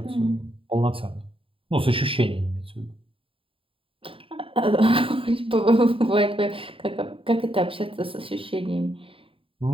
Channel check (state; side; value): late; left; 0.26 ms